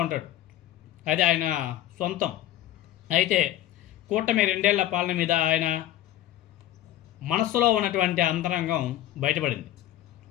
ఉంటాడు. అది ఆయన సొంతం. అయితే కూటమి 2 ఏళ్ల పాలన మీద ఆయన మనస్సులో ఉన్నటువంటి అంతరంగం బయటపడింది.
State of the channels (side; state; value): right; quieter; 13.4 dB